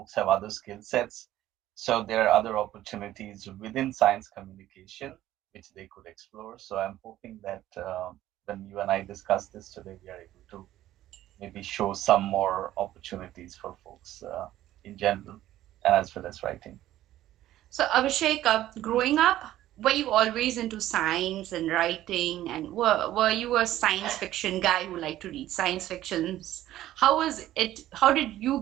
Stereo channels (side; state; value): left; quieter; 13.8 dB